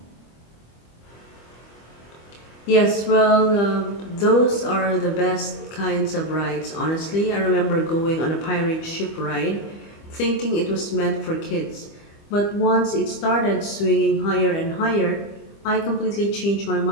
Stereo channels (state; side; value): late; right; 25 ms